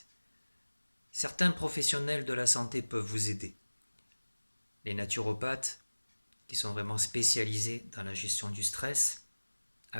Certains professionnels de la santé peuvent vous aider. Les naturopathes, qui sont vraiment spécialisés dans la gestion du stress,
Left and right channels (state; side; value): inverted; both; correlation -1.00